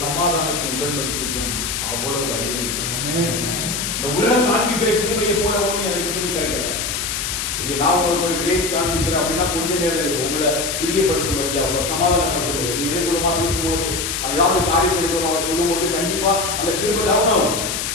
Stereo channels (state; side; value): noise; left; hiss, 2 dB below the sound